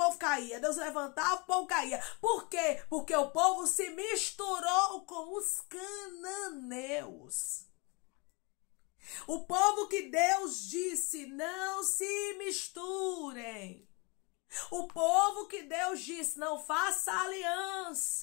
caía. Deus levantava, o povo caía. Por quê? Porque o povo se misturou com os cananeus. O povo que Deus disse, não se misturem. O povo que Deus disse, não faça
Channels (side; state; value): right; quieter; 29.7 dB